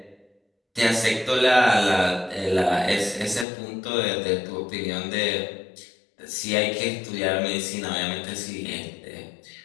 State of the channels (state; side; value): drops out; right; at 3.5 s